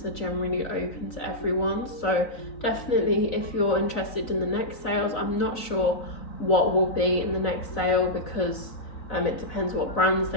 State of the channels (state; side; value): late; right; 3.9 ms